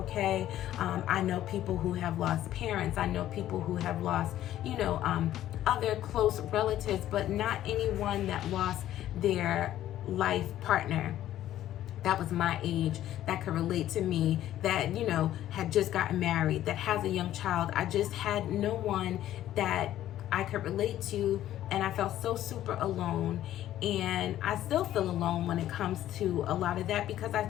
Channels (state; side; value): quieter; right; 12.8 dB